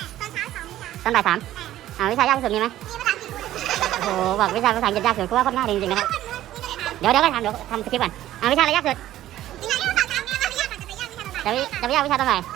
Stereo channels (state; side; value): quieter; left; 13.6 dB